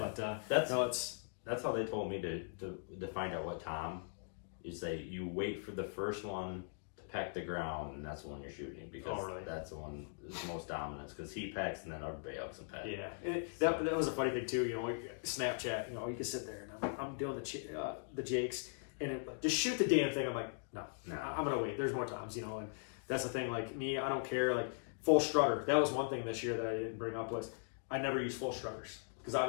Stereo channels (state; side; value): silent; right; digital silence